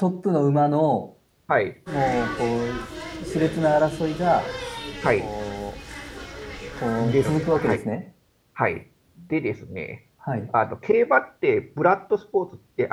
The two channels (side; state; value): both; identical; correlation 1.00